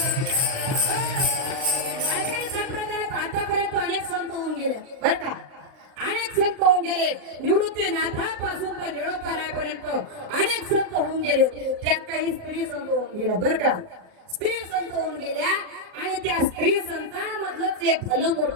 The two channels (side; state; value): left; late; 38 ms